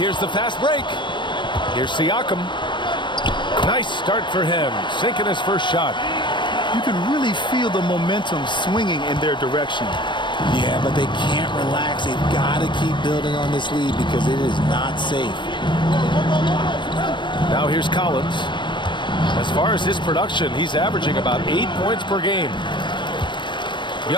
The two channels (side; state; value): right; late; 0.22 ms